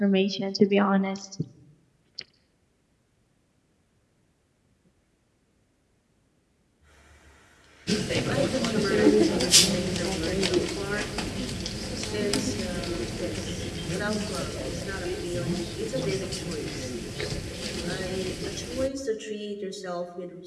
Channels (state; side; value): identical; both; correlation 1.00